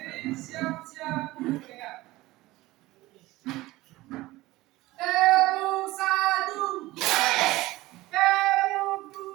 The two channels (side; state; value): left; quieter; 18.6 dB